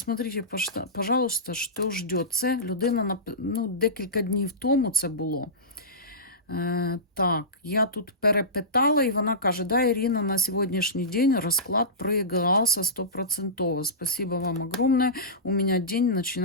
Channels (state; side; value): normal; both; correlation -0.19